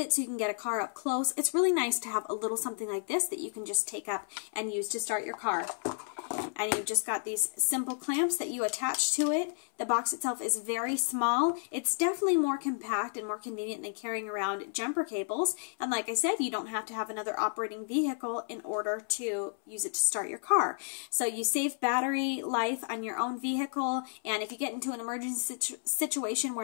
so you can get a car up close, it's really nice to have a little something like this that you can just take up and use to start your car. And you've just got these simple clamps that you attach to it. The box itself is very small. It's definitely more compact and more convenient than carrying around jumper cables. And like I said, you don't have to have another operating vehicle in order to use it to start your car. So you save battery life on your own vehicle, and if you get into an emergency situation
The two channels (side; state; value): right; silent; 57 dB below the other